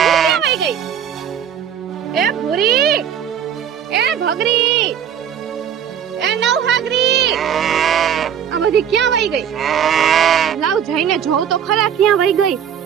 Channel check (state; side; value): quieter; left; 8.8 dB